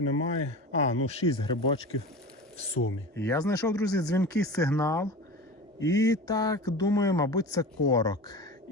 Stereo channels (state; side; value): normal; both; correlation 0.32